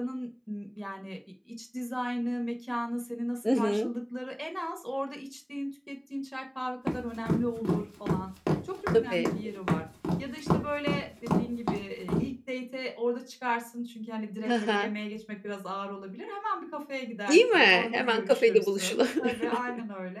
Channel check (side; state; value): both; identical; correlation 1.00